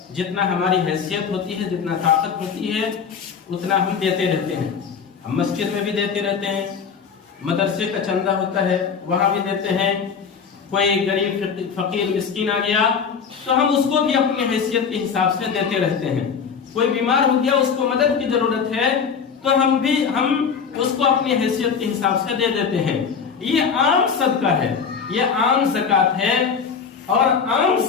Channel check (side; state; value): right; quieter; 6.3 dB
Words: جتنا ہماری حیثیت ہوتی ہے، جتنا طاقت ہوتی ہے، اتنا ہم دیتے رہتے ہیں۔ ہم مسجد میں بھی دیتے رہتے ہیں، مدرسے کا چندہ ہوتا ہے وہاں بھی دیتے ہیں۔ کوئی غریب فقیر مسکین آ گیا تو ہم اس کو بھی اپنی حیثیت کے حساب سے دیتے رہتے ہیں۔ کوئی بیمار ہو گیا، اس کو مدد کی ضرورت ہے تو ہم اس کو اپنی حیثیت کے حساب سے دے دیتے ہیں۔ یہ عام صدقہ ہے، یہ عام زکات ہے، اور عام